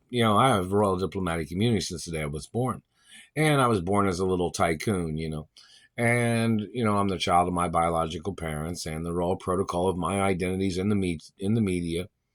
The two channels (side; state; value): both; identical; correlation 1.00